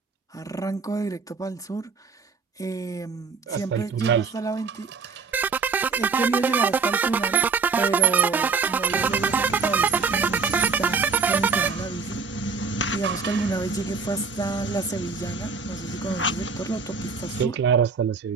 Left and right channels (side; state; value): left; quieter; 5.0 dB